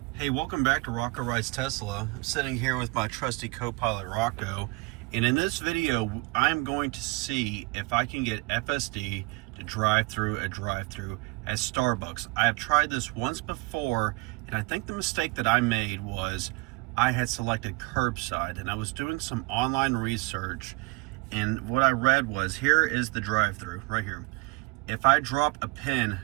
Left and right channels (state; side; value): quieter; left; 26.6 dB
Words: Hey, welcome back to Rocco Rides Tesla. I'm sitting here with my trusty co-pilot Rocco, and in this video I'm going to see if I can get FSD to drive through a drive-thru at Starbucks. I have tried this once before, and I think the mistake that I made was I had selected curbside, and I was doing some online research, and what I read was, here is the drive-thru right here. If I drop a pin